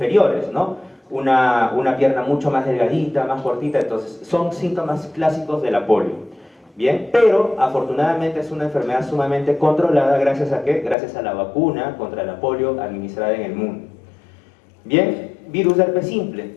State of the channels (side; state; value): right; drops out; at 11.0 s